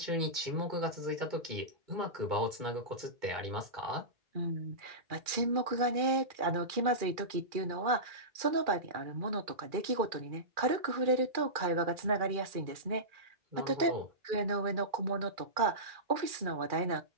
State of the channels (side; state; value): left; late; 2.4 ms